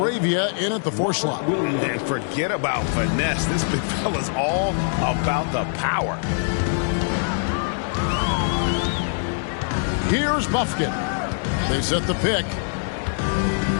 in at the 4 slot. And forget about finesse. This big fella's all about the power. Here's Buffkin. They set the pick.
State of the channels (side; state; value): right; silent; digital silence